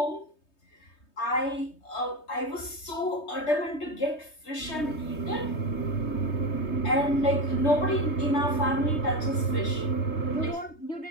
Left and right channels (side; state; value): right; late; 3.2 ms